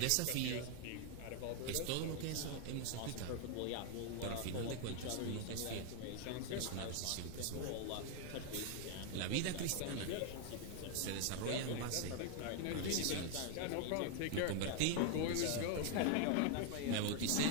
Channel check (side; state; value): both; different; correlation 0.00